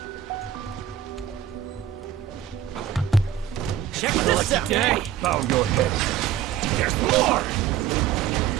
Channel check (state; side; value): quieter; left; 9.9 dB